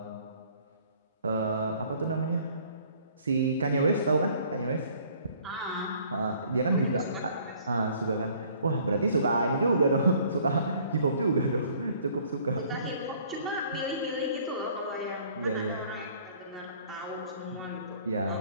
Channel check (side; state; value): both; inverted; correlation -0.57